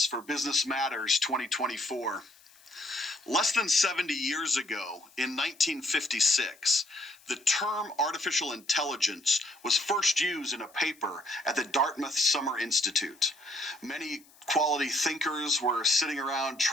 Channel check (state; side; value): noise; left; hiss, 27 dB below the sound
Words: for Business Matters 2024. Less than 70 years ago, in 1956, the term artificial intelligence was first used in a paper at the Dartmouth Summer Institute. Many quality thinkers were sitting around